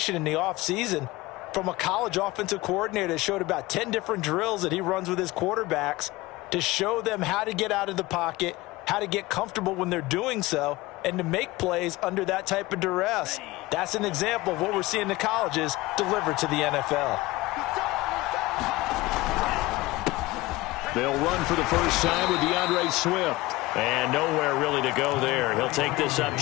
in the offseason from a college offensive coordinator that showed about 10 different drills that he runs with his quarterbacks to show them how to get out of the pocket, how to get comfortable when they're doing so, and to make plays under that type of duress. That's an example of what we're seeing in the colleges delivered to the NFL. They'll run for the first time with DeAndre Swift. And nowhere really to go there. He'll take this up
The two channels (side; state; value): right; quieter; 19.8 dB